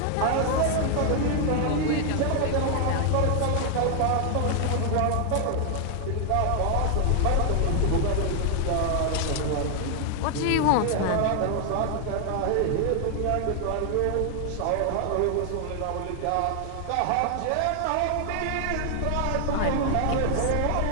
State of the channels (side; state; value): both; different; correlation 0.00